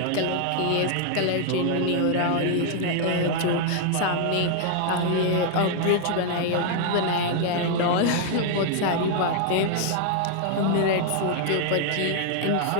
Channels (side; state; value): both; different; correlation 0.00